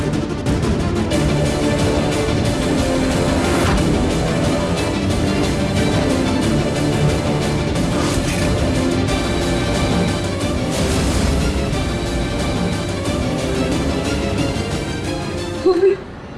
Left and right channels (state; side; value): identical; both; correlation 1.00